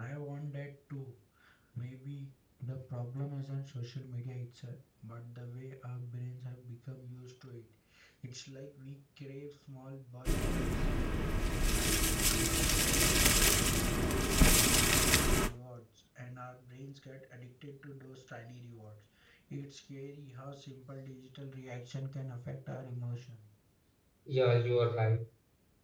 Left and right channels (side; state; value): both; identical; correlation 1.00